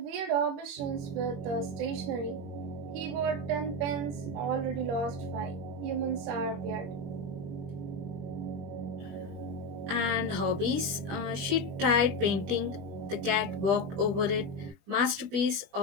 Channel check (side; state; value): left; late; 20 ms